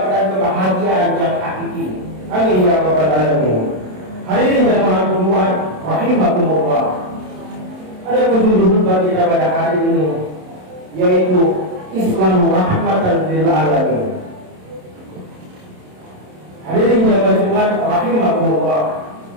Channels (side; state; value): left; late; 27 ms